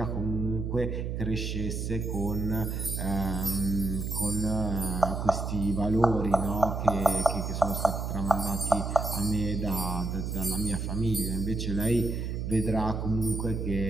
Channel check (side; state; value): right; noise; hum, 3 dB below the sound